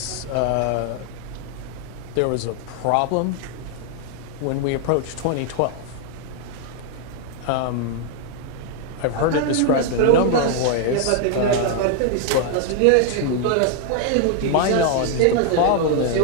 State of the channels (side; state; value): both; different; correlation 0.00